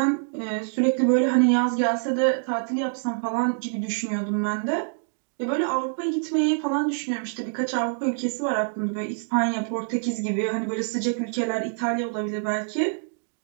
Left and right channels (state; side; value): silent; left; digital silence